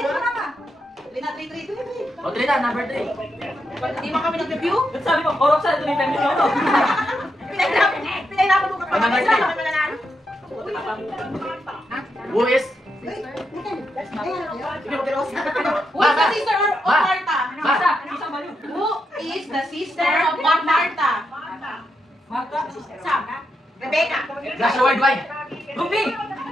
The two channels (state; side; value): normal; both; correlation 0.83